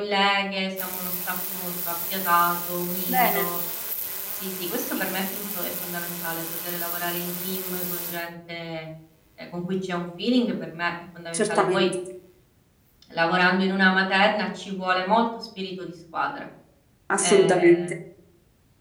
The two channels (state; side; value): identical; both; correlation 1.00